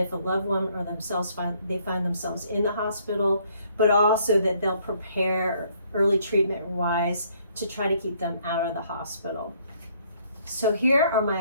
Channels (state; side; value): inverted; both; correlation -0.65